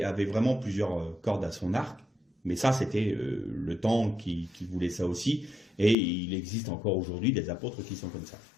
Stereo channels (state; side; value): drops out; right; at 6.0 s